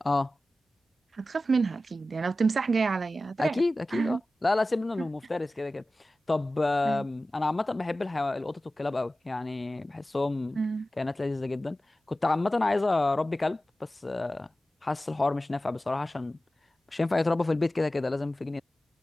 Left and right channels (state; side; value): normal; both; correlation 0.95